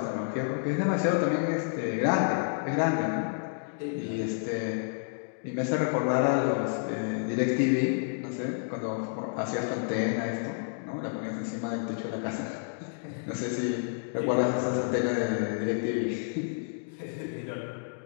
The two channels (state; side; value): silent; right; digital silence